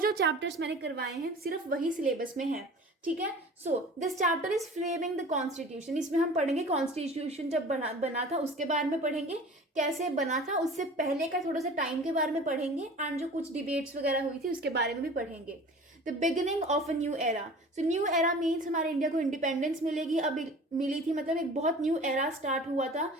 चैप्टर्स मैंने करवाए हैं सिर्फ वही सिलेबस में है. ठीक है. So this chapter is framing the constitution. इसमें हम पढ़ेंगे कॉन्स्टिट्यूशन जब बना था उसके बारे में पढ़ेंगे, कैसे बना था उससे पहले का थोड़ा सा टाइम के बारे में पढ़ेंगे एंड जो कुछ डिबेट्स वगैरह हुई थी उसके बारे में भी पढ़ेंगे. The beginning of a new era. So new era means हमारे इंडिया को इंडिपेंडेंस मिलेगी, अब मिली थी, मतलब एक बहुत न्यू एरा स्टार्ट हुआ था.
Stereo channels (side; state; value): both; normal; correlation 0.42